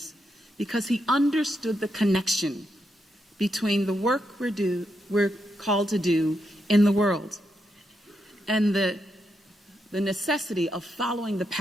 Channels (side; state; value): both; normal; correlation 0.82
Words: because he understood the connection between the work we're called to do in the world and the necessity of following the